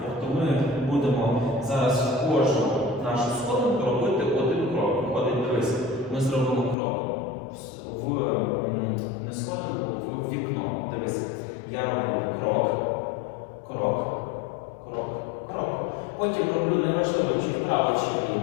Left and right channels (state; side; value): drops out; right; at 6.8 s